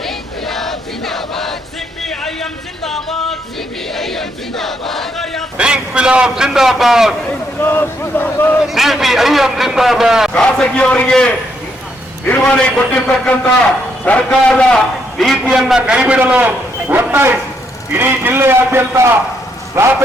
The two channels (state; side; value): normal; both; correlation 0.75